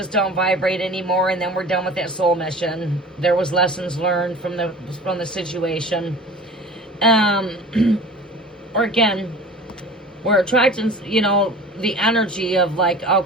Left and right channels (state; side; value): normal; both; correlation 0.41